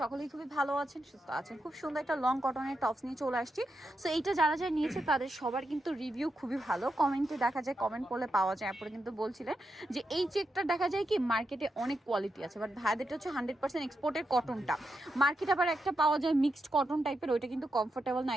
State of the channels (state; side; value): normal; both; correlation 0.85